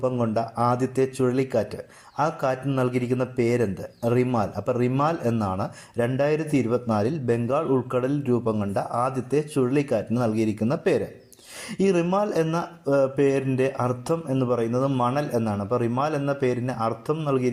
കൊണ്ട ആദ്യത്തെ ചുഴലിക്കാറ്റ്, ആ കാറ്റിന് നൽകിയിരിക്കുന്ന പേരെന്ത്? റിമാൽ. അപ്പോൾ റിമാൽ എന്നാണ് 2024 ബംഗാൾ ഉൾക്കടലിൽ രൂപം കൊണ്ട ആദ്യത്തെ ചുഴലിക്കാറ്റിന് നൽകിയിരിക്കുന്ന പേര്. ഈ റിമാൽ എന്ന പേരിൻ്റെ അർത്ഥം എന്ന് പറയുന്നത് മണൽ എന്നാണ്. അപ്പോൾ റിമാൽ എന്ന പേരിന് അർത്ഥം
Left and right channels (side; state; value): both; identical; correlation 1.00